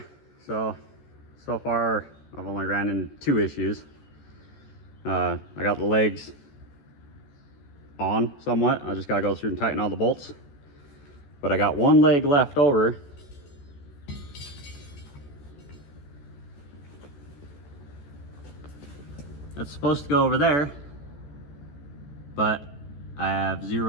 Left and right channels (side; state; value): right; late; 14 ms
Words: so far I've only ran into 2 issues. I got the legs on somewhat. I just gotta go through and tighten all the bolts. But I got one leg left over. It's supposed to go over there, but I have